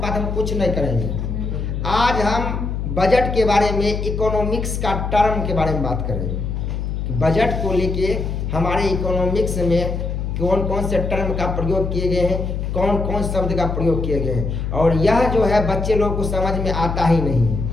बात हम कुछ नहीं करेंगे। आज हम बजट के बारे में, इकोनॉमिक्स का टर्म के बारे में बात करेंगे। बजट को लेके हमारे इकोनॉमिक्स में कौन कौन से टर्म का प्रयोग किए गए हैं, कौन कौन शब्द का प्रयोग किए गए हैं, और यह जो है बच्चे लोग को समझ में आता ही नहीं है।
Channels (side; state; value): left; noise; hum, 3 dB below the sound